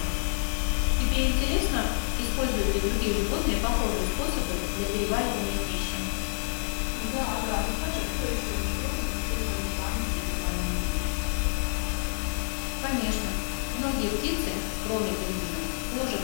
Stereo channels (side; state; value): right; silent; 59 dB below the other